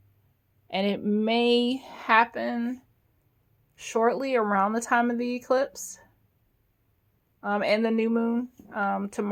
And it may happen shortly around the time of the eclipse and the new moon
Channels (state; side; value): identical; both; correlation 1.00